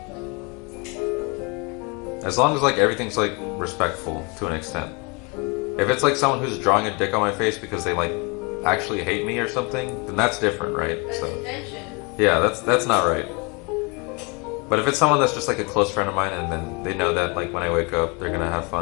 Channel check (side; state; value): right; quieter; 30.3 dB